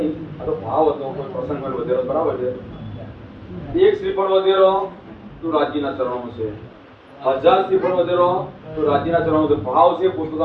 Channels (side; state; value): both; identical; correlation 1.00